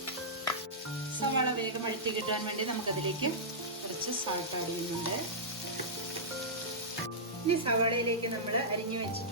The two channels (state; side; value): normal; both; correlation -0.14